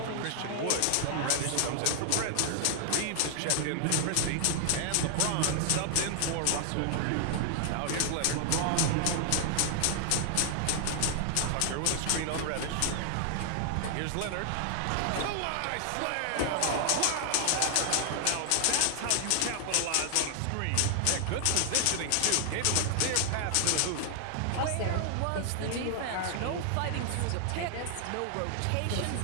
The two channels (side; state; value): both; different; correlation 0.00